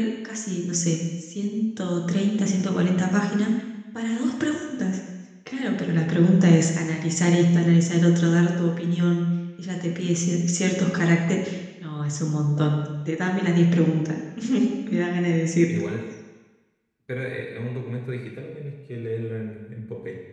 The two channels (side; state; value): both; identical; correlation 1.00